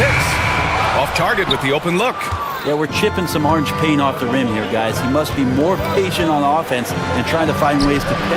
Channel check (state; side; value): identical; both; correlation 1.00